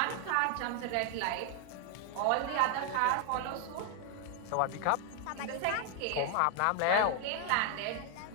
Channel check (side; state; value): both; different; correlation 0.00